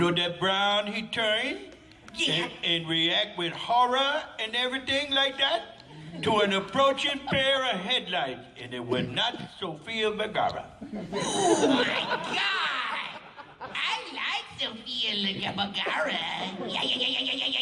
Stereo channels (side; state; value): both; identical; correlation 1.00